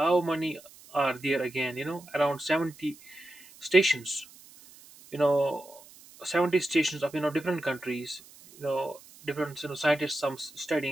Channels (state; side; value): noise; right; hiss, 22 dB below the sound